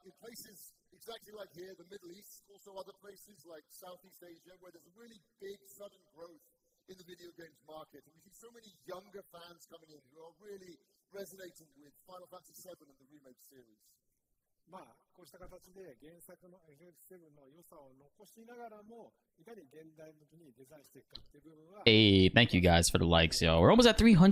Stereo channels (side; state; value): both; identical; correlation 1.00